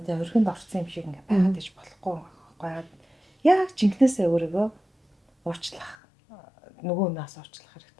те өргөнд орсон юм шиг ингээд байгаад иж болохгүй байхгүй. Яг жинкнээсээ өөрийгөө уучлах нөгөө нас уучлах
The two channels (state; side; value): drops out; right; at 6.0 s